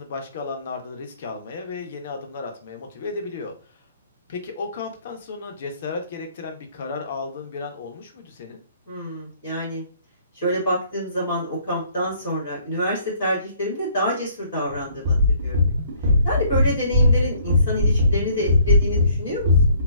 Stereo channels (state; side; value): inverted; both; correlation -0.61